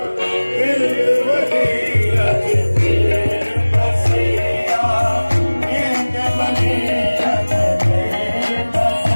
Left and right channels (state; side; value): inverted; both; correlation -1.00